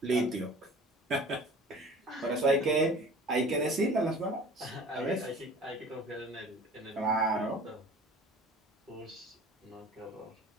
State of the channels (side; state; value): both; normal; correlation 0.44